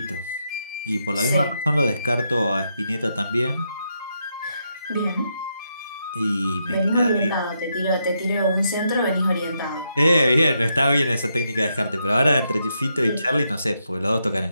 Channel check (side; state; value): both; inverted; correlation -0.81